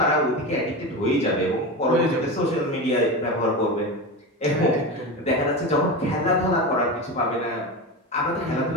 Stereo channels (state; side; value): normal; both; correlation 0.23